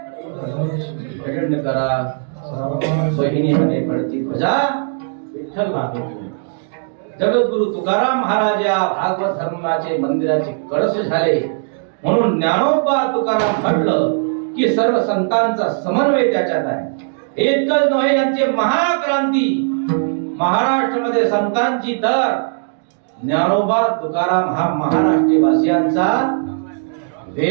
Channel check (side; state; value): left; silent; digital silence